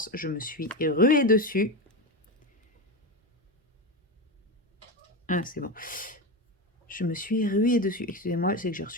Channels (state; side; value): normal; both; correlation 0.17